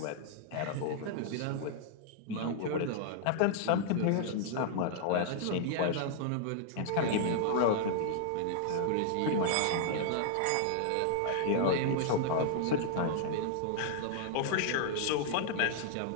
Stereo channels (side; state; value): both; different; correlation -0.01